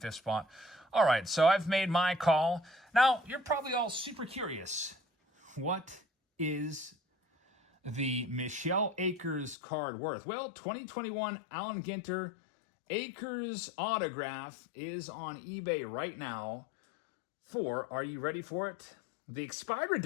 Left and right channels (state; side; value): drops out; right; at 9.6 s